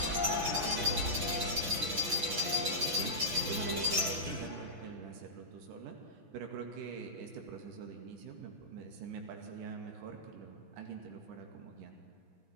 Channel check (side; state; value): left; late; 6.0 ms